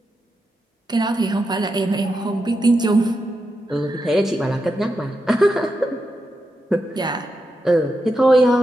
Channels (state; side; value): normal; both; correlation 0.87